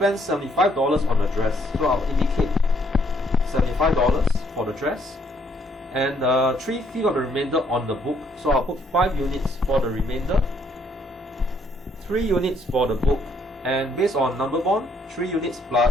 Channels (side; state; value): both; normal; correlation 0.68